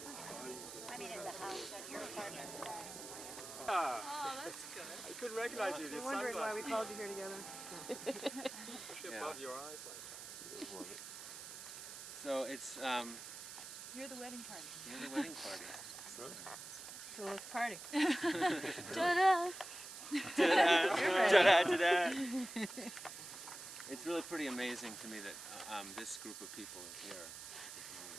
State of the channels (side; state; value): right; noise; hiss, 11 dB below the sound